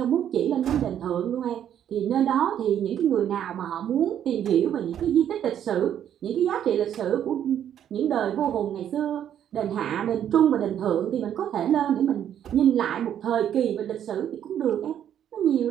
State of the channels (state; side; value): quieter; left; 9.9 dB